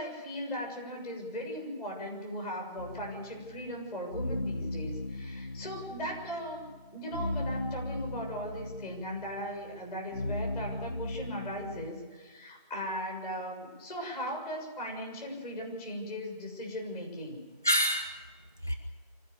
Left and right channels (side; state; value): both; inverted; correlation -0.39